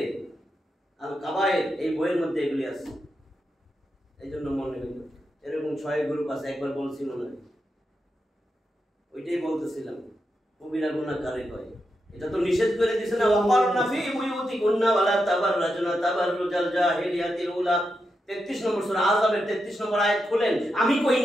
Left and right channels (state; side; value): normal; both; correlation 0.86